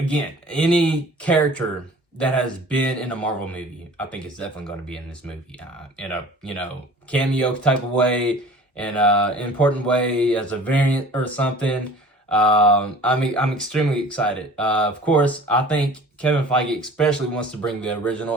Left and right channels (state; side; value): normal; both; correlation 0.45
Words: any character that has been in a Marvel movie, I think it's definitely going to be in this movie in a cameo type of way, in an important way, as a variant or something. I'm extremely excited. Of course, I think Kevin Feige especially wants to bring the